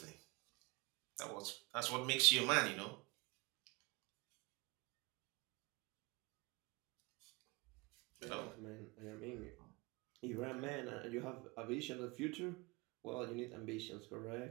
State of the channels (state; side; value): quieter; left; 26.5 dB